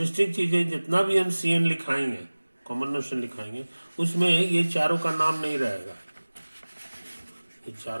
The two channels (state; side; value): inverted; both; correlation -1.00